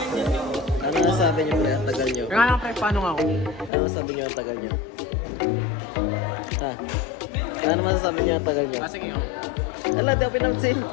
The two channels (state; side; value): drops out; right; at 3.7 s